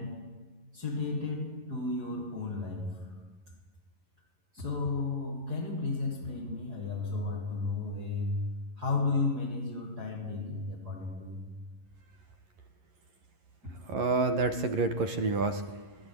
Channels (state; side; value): late; left; 11 ms